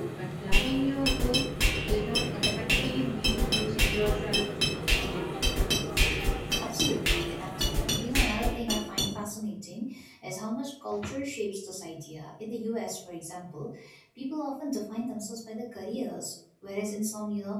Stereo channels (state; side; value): identical; both; correlation 1.00